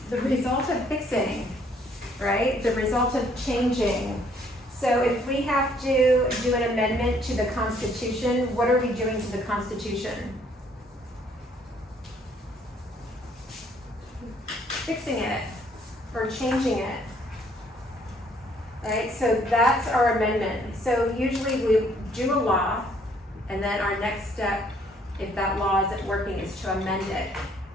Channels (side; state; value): both; normal; correlation 0.64